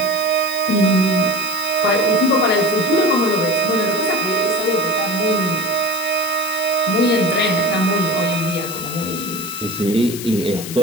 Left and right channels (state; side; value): noise; left; hiss, 10 dB below the sound